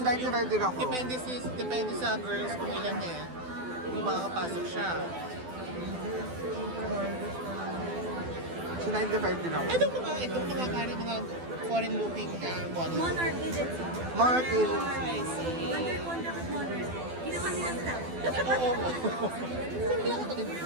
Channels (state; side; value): late; left; 12 ms